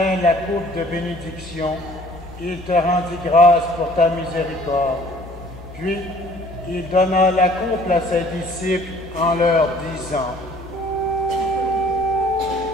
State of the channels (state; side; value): normal; both; correlation 0.55